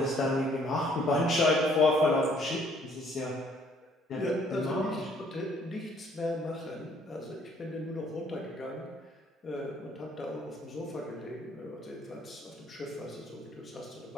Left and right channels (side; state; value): both; normal; correlation 0.62